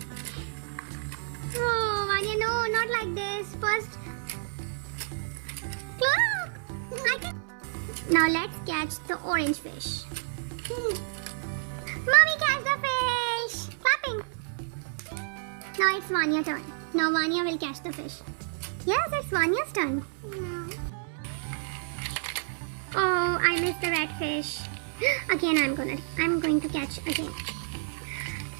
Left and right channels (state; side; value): silent; left; 58 dB below the other